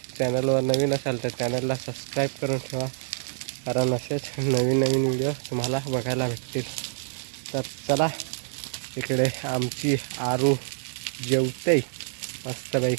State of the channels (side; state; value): left; silent; digital silence